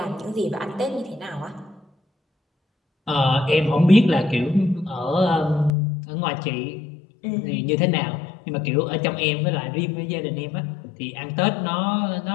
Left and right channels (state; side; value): drops out; right; at 5.7 s